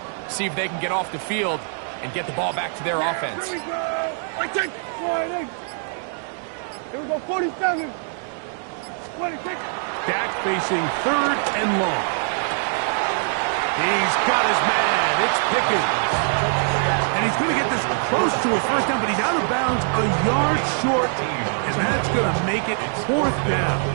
See if they can get off the field and get the ball back to their offense. Here we go. Sliding. Here we go, 47. 26. Dak facing 3rd and long. He's got his man. It's Pickens. And he's going to get this close to a first down, but he's out of bounds a yard short, and that's going to make it 4th down.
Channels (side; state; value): left; silent; 56 dB below the other